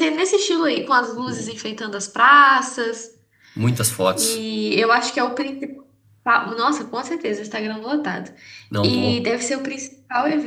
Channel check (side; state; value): both; identical; correlation 1.00